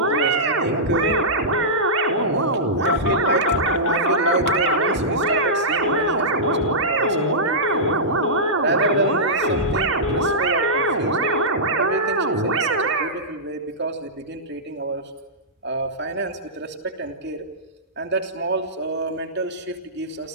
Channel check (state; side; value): normal; both; correlation -0.14